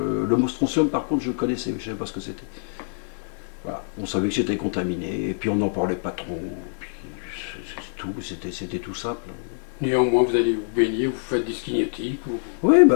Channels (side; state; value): right; silent; digital silence